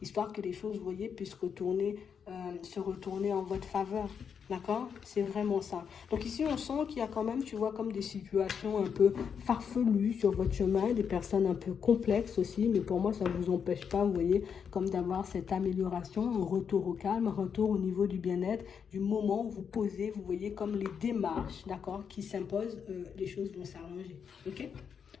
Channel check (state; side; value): quieter; right; 7.0 dB